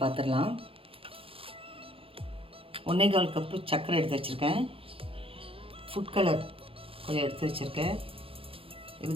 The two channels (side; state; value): left; late; 0.27 ms